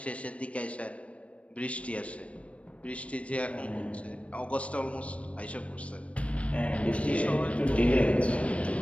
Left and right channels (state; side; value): late; right; 0.063 ms